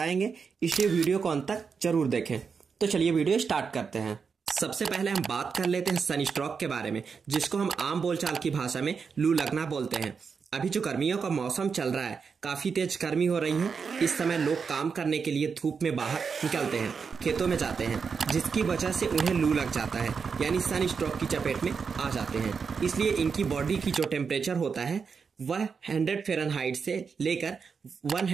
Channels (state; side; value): quieter; left; 5.7 dB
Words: इसलिए वीडियो को अंत तक जरूर देखें। तो चलिए वीडियो स्टार्ट करते हैं। सबसे पहले हम बात कर लेते हैं सन स्ट्रोक के बारे में, जिसको हम आम बोलचाल की भाषा में लू लगना बोलते हैं। अभी जो गर्मियों का मौसम चल रहा है, काफी तेज गर्मी हो रही है। इस समय लोग काम करने के लिए धूप में बाहर निकलते हैं, खेतों में जाते हैं, जिसकी वजह से उन्हें लू लग जाता है, यानी सन स्ट्रोक की चपेट में आ जाते हैं। इसलिए इनकी बॉडी की जो टेम्परेचर होता है वह 100 फ़ारेनहाइट से लेकर